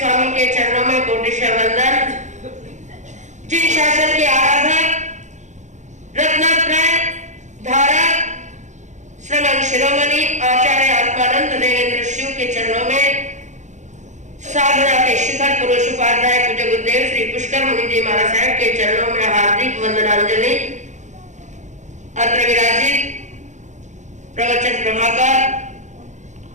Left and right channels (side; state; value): left; late; 0.35 ms